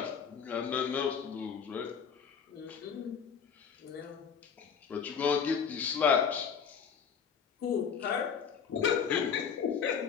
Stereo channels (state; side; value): quieter; right; 6.8 dB